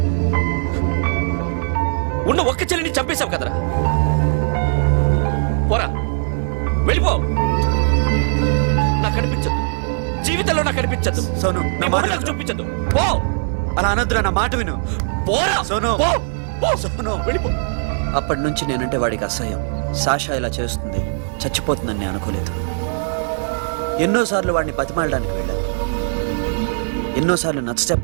ఉన్న ఒక్క చెల్లిని చంపేశావు కదరా. పోరా, వెళ్ళిపో. నాకు కనిపించదు, జీవితంలో నాకు కనిపించదు. సోను, నా మాట విను. చూపించదు. పో. అలా అనొద్దురా, నా మాట విను. పోరా సోను, పో. పో. సోను. వెళ్ళిపో. అప్పటి నుంచి నేనంటే వాడికి అసహ్యం. సాషా ఇలా చేస్తుంది, చచ్చిపోతుందని నేను అనుకోలేదు. ఎన్నోసార్లు వాడిని బతిమాలడానికి వెళ్ళాను, ఎన్నోసార్లు నచ్చ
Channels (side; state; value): left; silent; 58 dB below the other